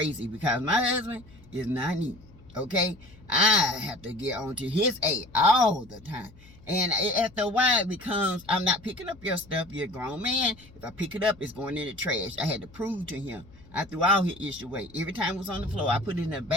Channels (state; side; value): noise; left; hum, 23 dB below the sound